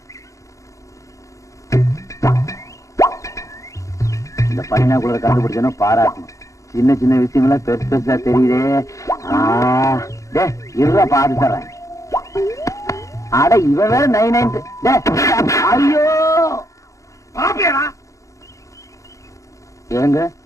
இந்த பனினாக்குள்ள கண்டுபிடிச்சோன்னா பாராட்டணும். சின்ன சின்ன விஷயம் எல்லாம் பெருசு பெருசா தெரியுதே. இருவா பாத்து தர்றேன். அட இவன் வேற 9 ஐயோ ஏங்க,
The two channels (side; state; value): right; late; 0.15 ms